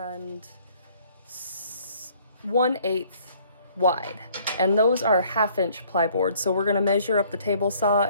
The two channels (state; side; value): inverted; both; correlation -0.60